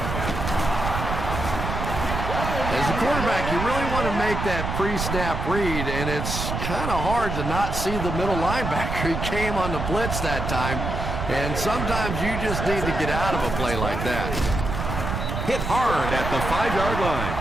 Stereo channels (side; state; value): right; noise; rumble, 3 dB below the sound